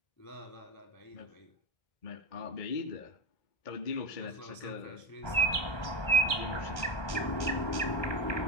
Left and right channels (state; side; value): late; right; 1.3 ms